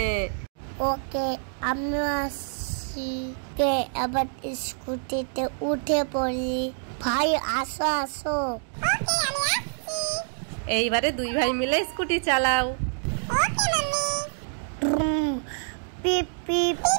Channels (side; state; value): left; silent; digital silence